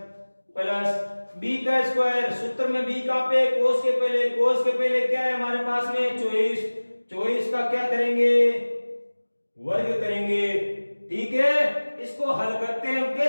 प्लस b का स्क्वायर। सूत्र में b कहां पे? कोस के पहले। कोस के पहले क्या है हमारे पास में? 24। 24 का क्या करेंगे? वर्ग करेंगे। ठीक है, इसको हल करते हैं। हम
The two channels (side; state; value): both; inverted; correlation -1.00